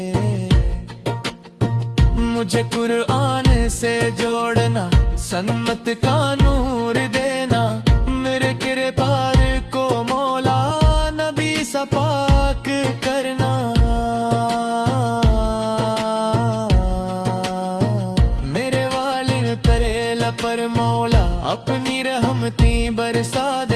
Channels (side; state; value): both; identical; correlation 1.00